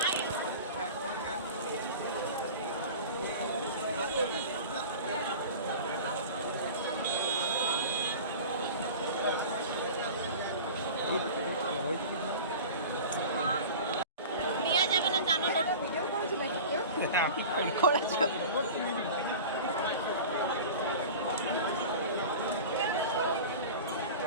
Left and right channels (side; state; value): both; inverted; correlation -0.36